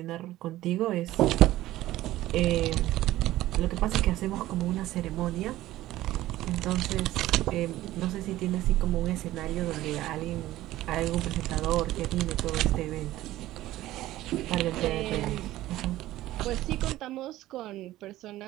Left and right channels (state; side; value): quieter; left; 15.5 dB